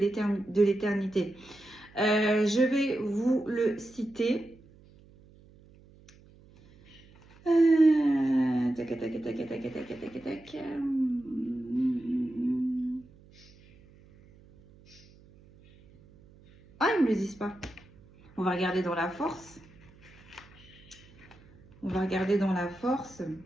Je vais vous le citer. Tac, tac, tac, tac, tac, tac, tac, tac. Ah, ils ne me le disent pas. On va regarder dans la force. On va regarder dans la force.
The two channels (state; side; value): noise; right; hum, 25 dB below the sound